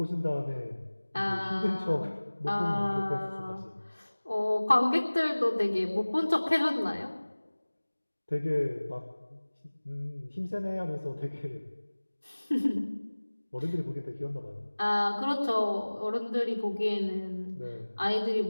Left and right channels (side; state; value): both; inverted; correlation -1.00